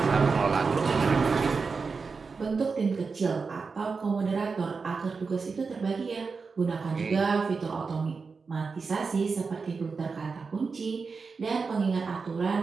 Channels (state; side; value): quieter; left; 4.8 dB